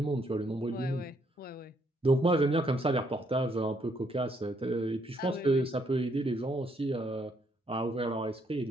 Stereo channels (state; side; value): normal; both; correlation 0.71